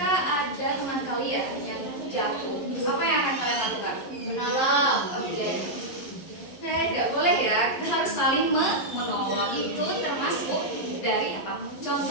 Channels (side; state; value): right; late; 11 ms